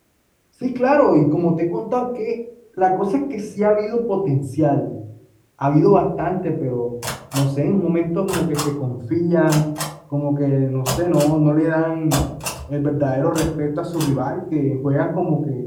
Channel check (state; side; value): identical; both; correlation 1.00